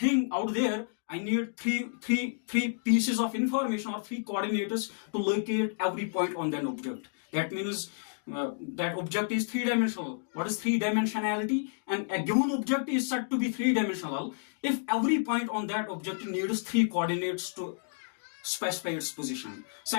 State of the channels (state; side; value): silent; right; digital silence